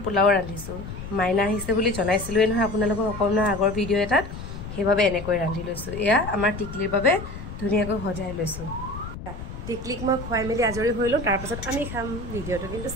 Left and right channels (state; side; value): noise; left; rumble, 10 dB below the sound